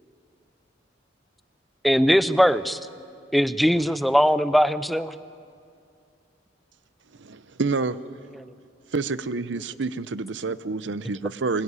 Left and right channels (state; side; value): normal; both; correlation 0.84